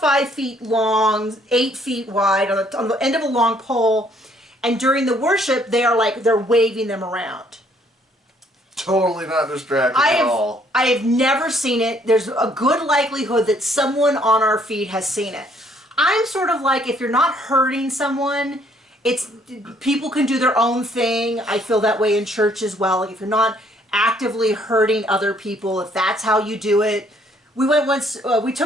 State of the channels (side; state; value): both; normal; correlation 0.64